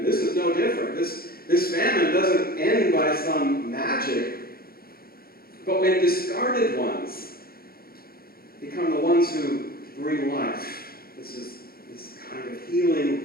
this is no different. This famine doesn't end by some magic, but when discarded ones become the ones who bring life. This is this kind of healing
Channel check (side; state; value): right; late; 0.44 ms